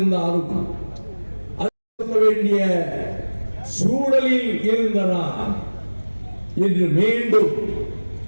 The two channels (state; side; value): inverted; both; correlation -1.00